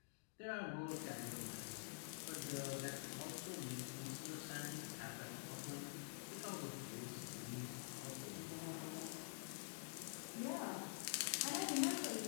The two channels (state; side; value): silent; right; digital silence